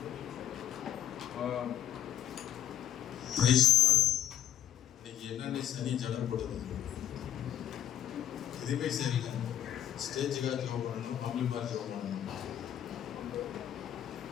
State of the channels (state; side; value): quieter; right; 10.9 dB